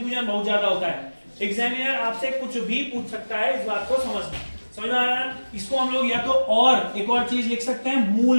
बहुत ज्यादा होता है। एग्जामिनर आपसे कुछ भी पूछ सकता है, इस बात को समझना। समझ में आ रहा है? इसको हम लोग या तो और एक और चीज लिख सकते हैं,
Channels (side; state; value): both; inverted; correlation -1.00